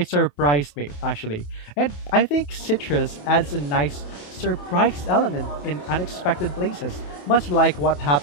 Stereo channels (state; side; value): late; right; 28 ms